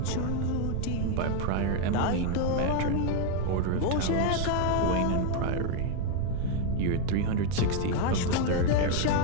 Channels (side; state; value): both; different; correlation 0.01